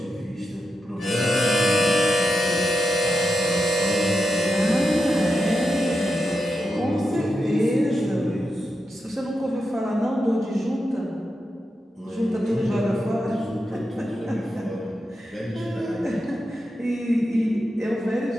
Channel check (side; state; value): both; normal; correlation 0.87